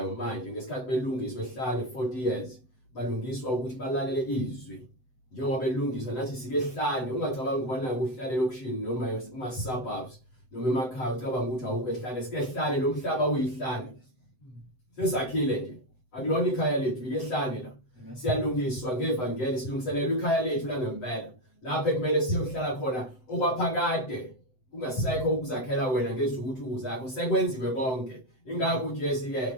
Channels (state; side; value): late; right; 7.8 ms